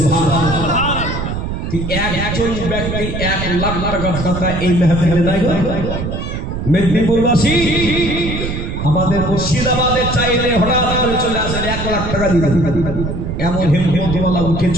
একজন ব্যক্তি 1 লাখ টাকার কথা এই মেহফিলে নাই গো। মেদিনীপুরবাসী আমাদের মুর্শিদাবাদে চাইলে হঠাৎ করে চলে আসেন 1 লাখ টাকা দিতে, এমন হিম্মতওয়ালা উঠে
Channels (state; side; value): noise; right; rumble, 4 dB below the sound